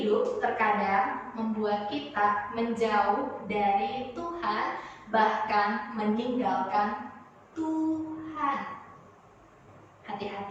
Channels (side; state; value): both; identical; correlation 1.00